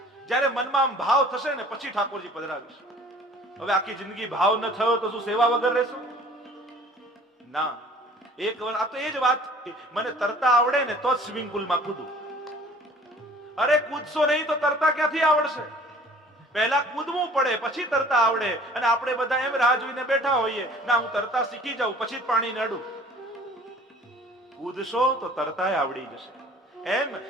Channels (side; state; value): both; normal; correlation 0.50